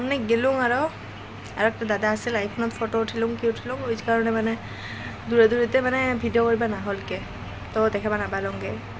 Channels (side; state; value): both; identical; correlation 1.00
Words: গেলুং আৰু একটা দাদা আছিল আইফোনত ফটো উঠিলুং কি উঠিলুং ওই কারণে মানে দূরে দূরেতে মানে ভিডিও করবা না হলকে তো দেখাবা না পালংগে